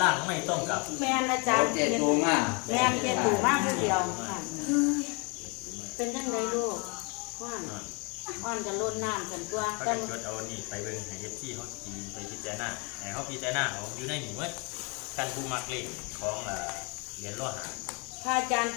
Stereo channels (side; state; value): right; quieter; 32.2 dB